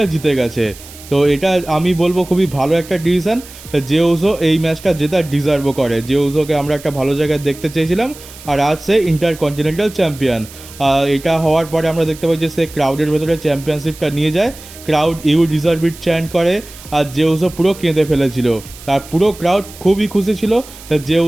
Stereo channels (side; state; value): right; noise; hiss, 18 dB below the sound